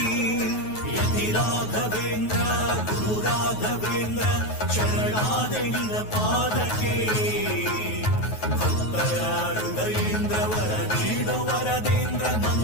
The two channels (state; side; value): late; right; 9.3 ms